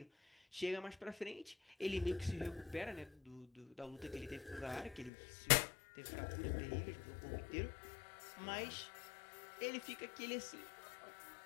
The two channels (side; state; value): right; drops out; at 5.1 s